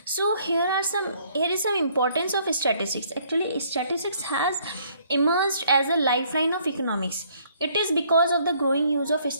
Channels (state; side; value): inverted; both; correlation -0.64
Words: so here is some importance of statistics. Actually statistics has emerged as a lifeline of economics. It is because of the growing use of